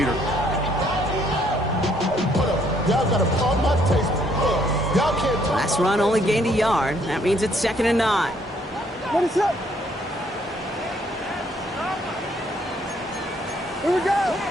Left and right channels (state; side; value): normal; both; correlation 0.67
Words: Last run only gained a yard. That means it's 2nd and 9. What is up? Here we go.